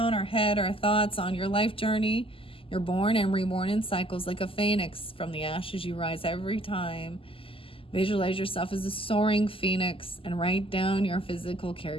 our head, our thoughts on your life journey. You're born and reborn in cycles like a phoenix. From the ashes you rise every time. Visualize yourself as a soaring phoenix and write down your physical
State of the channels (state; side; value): late; right; 0.26 ms